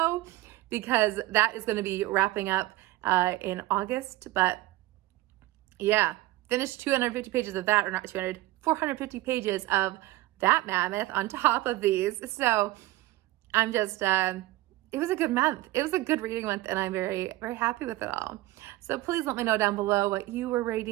because that is going to be wrapping up in August. But yeah, finished 250 pages of that, or not 200, 450 pages of that mammoth on top of these. So I'm just, it was a good month. It was a good reading month, and I'm very, very happy with it all. So please let me know down below what you were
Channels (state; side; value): quieter; left; 17.8 dB